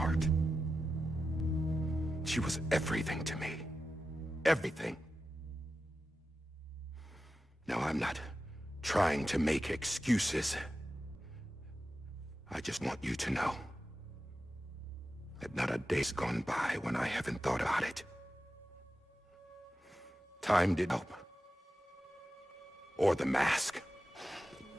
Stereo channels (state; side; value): normal; both; correlation 0.91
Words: She was everything to me. Everything. Now, I'm not trying to make excuses. I just want you to know that not a day's gone by when I haven't thought about it. Time didn't help. Or the mask.